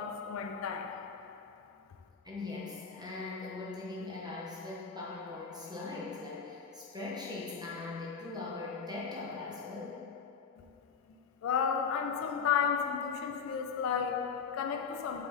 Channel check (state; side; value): quieter; right; 6.0 dB